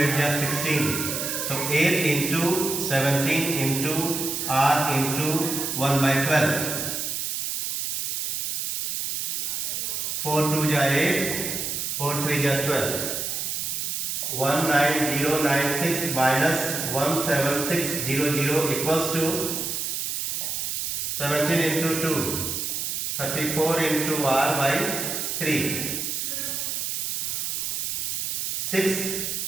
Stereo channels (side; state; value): right; noise; hiss, 2 dB below the sound